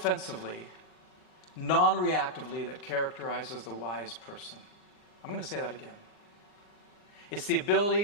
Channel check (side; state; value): right; late; 39 ms